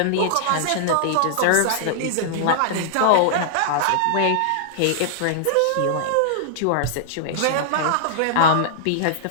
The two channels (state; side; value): different; both; correlation -0.01